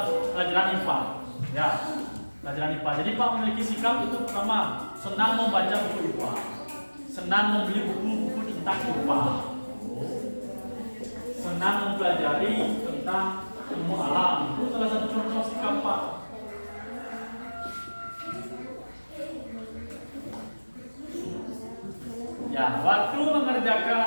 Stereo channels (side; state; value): both; inverted; correlation -1.00